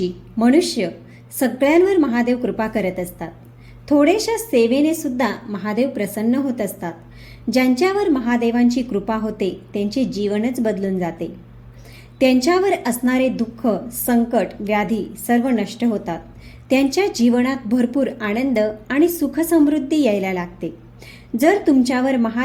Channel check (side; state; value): both; identical; correlation 1.00